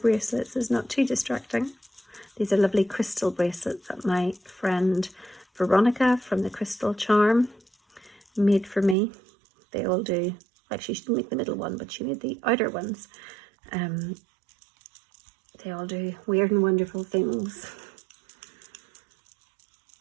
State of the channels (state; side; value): drops out; left; at 9.0 s